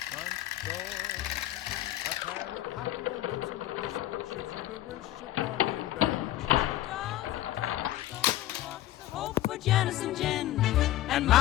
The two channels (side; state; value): right; quieter; 14.3 dB